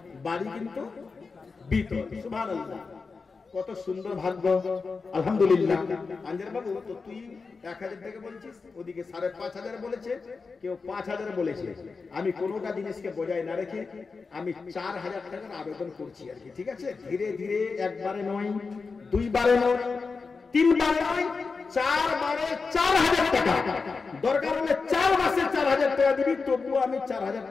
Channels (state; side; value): quieter; right; 4.6 dB